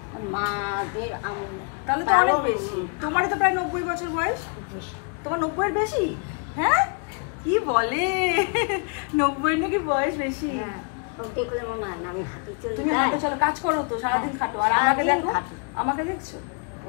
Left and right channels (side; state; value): right; quieter; 40.0 dB